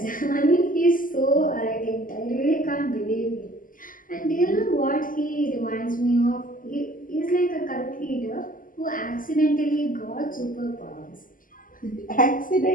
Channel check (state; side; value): late; right; 0.40 ms